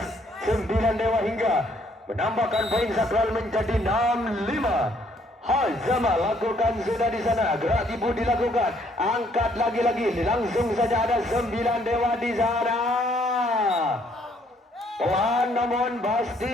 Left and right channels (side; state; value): both; normal; correlation 0.66